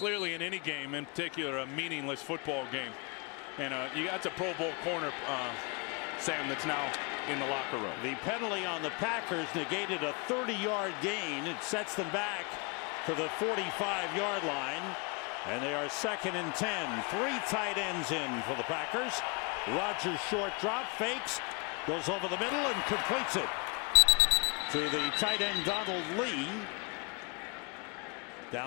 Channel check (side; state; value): right; quieter; 31.7 dB